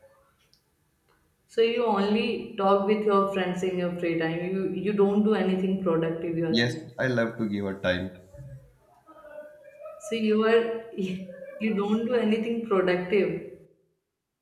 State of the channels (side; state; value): both; identical; correlation 1.00